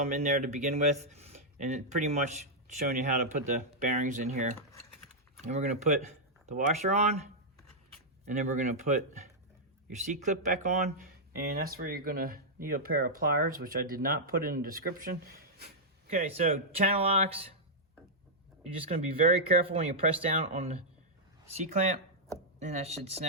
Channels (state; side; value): normal; both; correlation -0.07